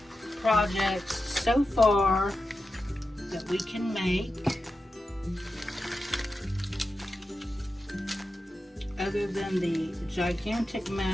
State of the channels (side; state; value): both; normal; correlation 0.91